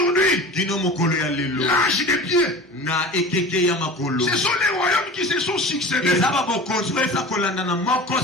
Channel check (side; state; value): both; normal; correlation 0.36